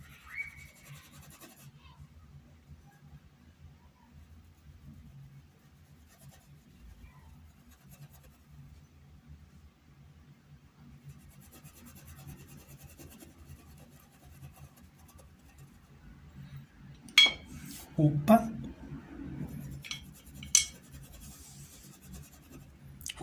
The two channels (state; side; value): identical; both; correlation 1.00